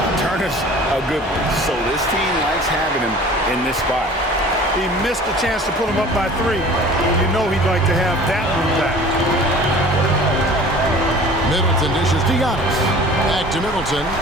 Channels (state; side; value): normal; both; correlation 0.45